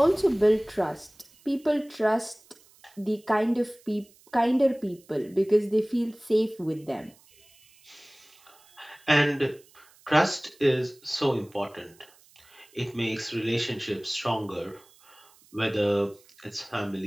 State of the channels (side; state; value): right; noise; hiss, 28 dB below the sound